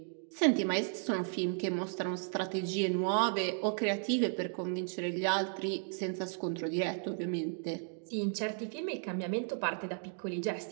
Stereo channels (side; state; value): left; silent; 55 dB below the other